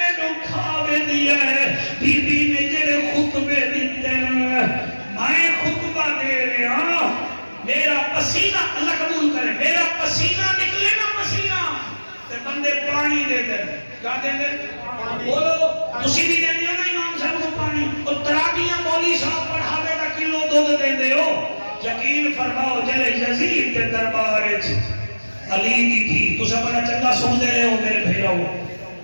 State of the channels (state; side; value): inverted; both; correlation -1.00